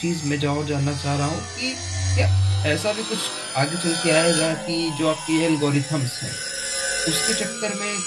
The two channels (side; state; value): both; identical; correlation 1.00